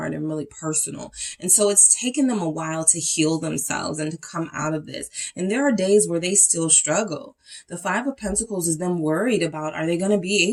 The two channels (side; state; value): both; identical; correlation 1.00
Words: and really personal. And so it's taken them a while to heal themselves and to come out of this. And there are days where they still struggle. The 5 of Pentacles is them worried about, are they going to be